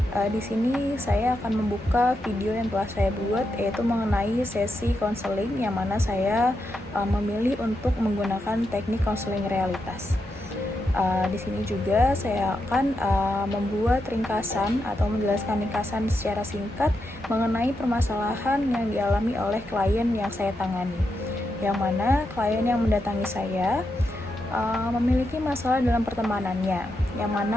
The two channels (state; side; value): normal; both; correlation 0.84